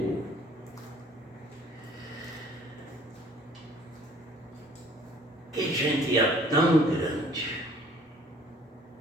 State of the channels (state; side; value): normal; both; correlation 0.55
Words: Que gente é tão grande?